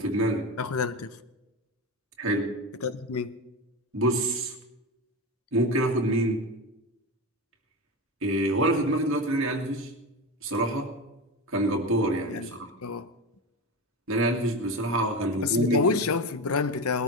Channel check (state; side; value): normal; both; correlation 0.22